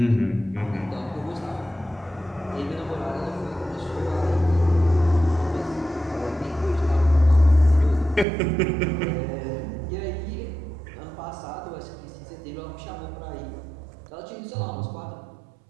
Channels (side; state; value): left; drops out; at 8.2 s